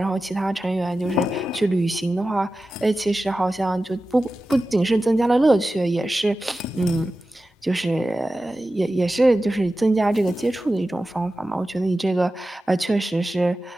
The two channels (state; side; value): normal; both; correlation 0.94